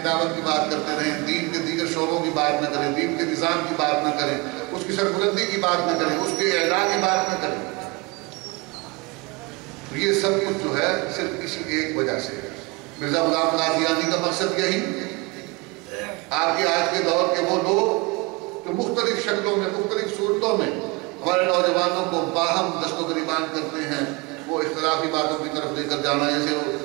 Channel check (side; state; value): left; quieter; 26.2 dB